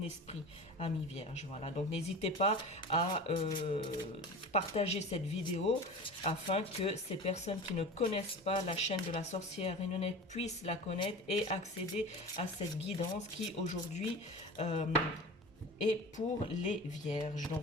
esprit, ami vierge. Voilà, donc n'hésitez pas à partager cette vidéo afin que ces personnes qui ne connaissent pas la chaîne de la sorcière Renonette puissent la connaître et accéder à cette guidance qui aujourd'hui et pour les vierges,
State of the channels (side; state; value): both; normal; correlation 0.34